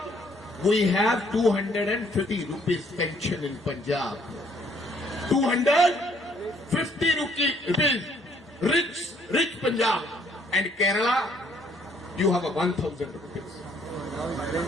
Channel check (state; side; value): normal; both; correlation 0.64